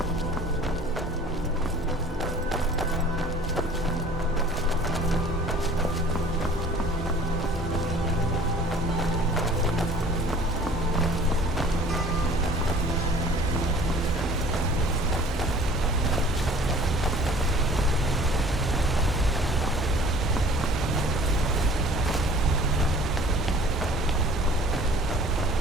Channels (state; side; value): normal; both; correlation 0.50